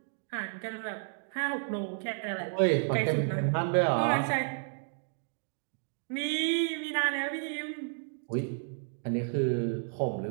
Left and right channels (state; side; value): silent; left; digital silence